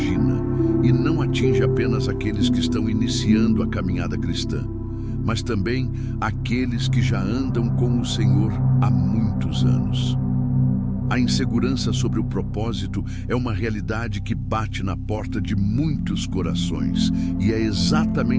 e não atinge apenas aqueles que estão iniciando a caminhada cristã, mas também aqueles que já andam com o Senhor há muitos anos. A insegurança sobre o propósito é uma realidade que bate na porta de muitos corações, e é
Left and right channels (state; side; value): identical; both; correlation 1.00